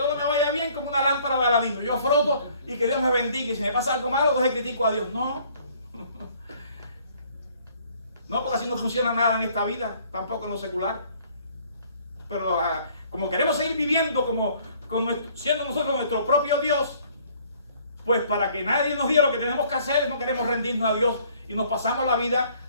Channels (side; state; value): both; inverted; correlation -0.59